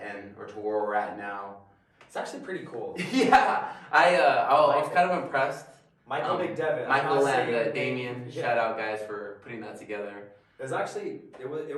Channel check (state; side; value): identical; both; correlation 1.00